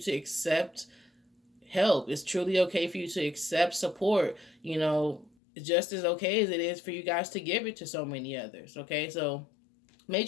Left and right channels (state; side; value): drops out; right; at 5.3 s